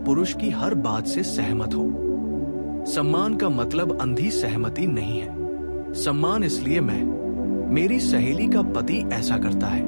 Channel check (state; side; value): inverted; both; correlation -1.00